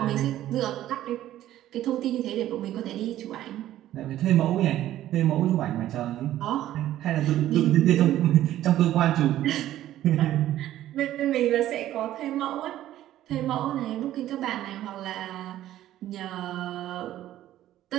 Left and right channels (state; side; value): quieter; left; 13.2 dB